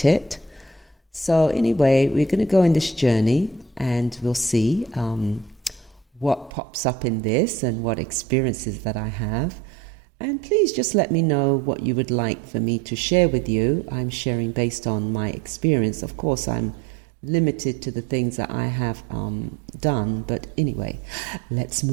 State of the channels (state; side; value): drops out; left; at 6.5 s